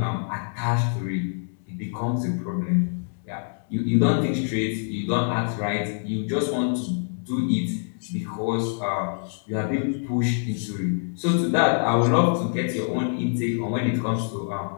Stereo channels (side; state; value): right; silent; digital silence